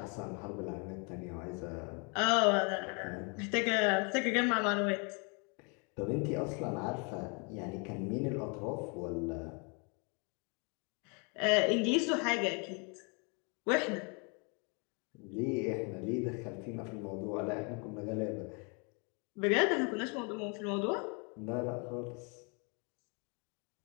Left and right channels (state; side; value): quieter; right; 34.3 dB